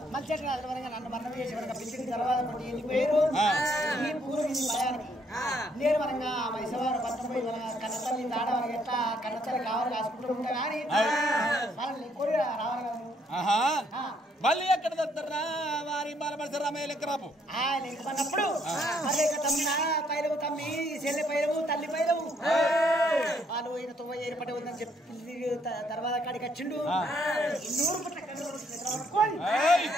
మళ్ళీ నన్ను మరణం చేసి పిలిచిన తర్వాత వెళ్ళిపోయారు ఈ పూర్వ భయానికి నేను మనగా మైసవారు పట్టపోయి మన కన్నతల్లి దాడ మనకి ఎట్లా కన్నతల్లి కావాలి కాసుకుంటూ ఉంటా కానీ వాళ్ళని కోరి రావాలి మళ్ళీ ఎక్కడ దొరుకుతారా వారి బాలమర్శ రామయ్య లెక్క రాపు అన్నప్పుడు మళ్ళీ తమ్మిన పైలవు తమ్మి చెల్లె పైలవు తల్లి పైలవు వాళ్ళు ఈయన తొవ్వ ఏర్పడి ఉందని చెప్పి తర్వాత కాడికి వచ్చిండు 200 పట్ల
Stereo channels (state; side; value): normal; both; correlation 0.69